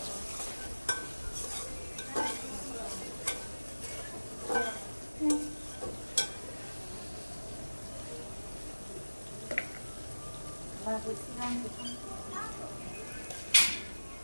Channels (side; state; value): both; inverted; correlation -1.00